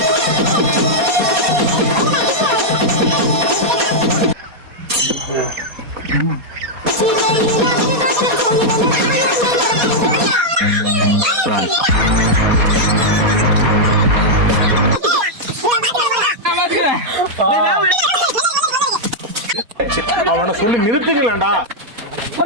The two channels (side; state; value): left; late; 4.2 ms